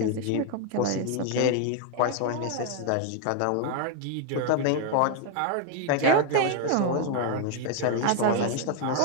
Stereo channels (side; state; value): both; different; correlation 0.00